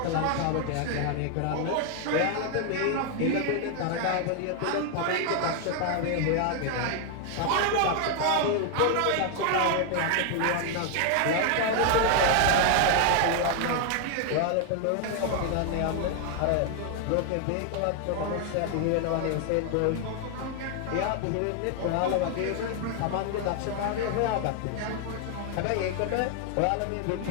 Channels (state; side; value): different; both; correlation 0.00